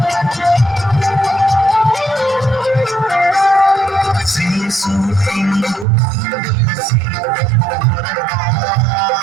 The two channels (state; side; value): drops out; left; at 5.9 s